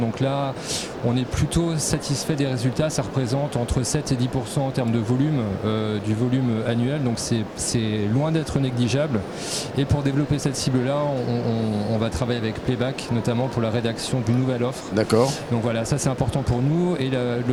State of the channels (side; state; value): both; identical; correlation 1.00